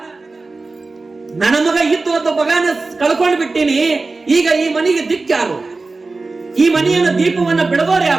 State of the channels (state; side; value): quieter; left; 3.6 dB